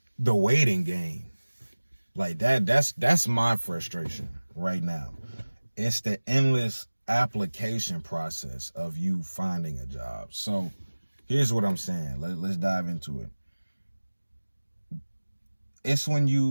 the waiting game. Like that's my frustration right now. It's the endless application process of you finding a job. So here's what I'm saying. Let's dive into it. It's when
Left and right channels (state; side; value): inverted; both; correlation -1.00